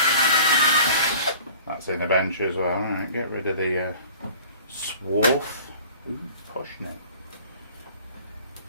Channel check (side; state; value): both; inverted; correlation -0.47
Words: That's in the bench as well. Alright, get rid of the swarf. Ooh, posh neck.